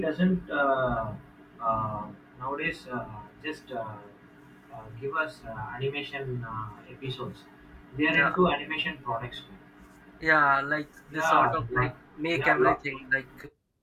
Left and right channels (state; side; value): identical; both; correlation 1.00